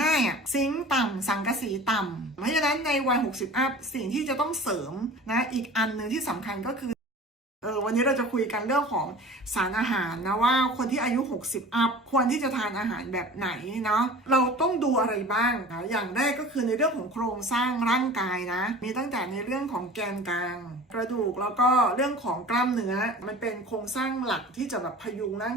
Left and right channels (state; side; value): normal; both; correlation 0.40